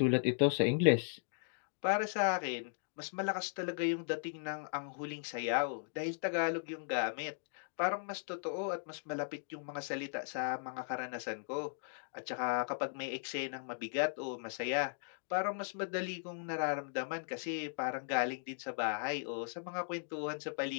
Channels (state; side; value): silent; right; digital silence